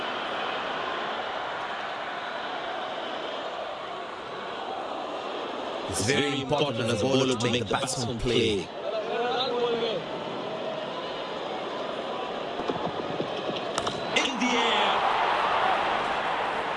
It's very important as a bowler to make the batsman play. In the air.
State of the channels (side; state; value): both; identical; correlation 1.00